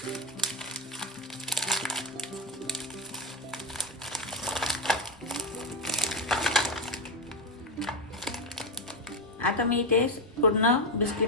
आता मी इथे पूर्ण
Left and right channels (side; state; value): both; normal; correlation 0.09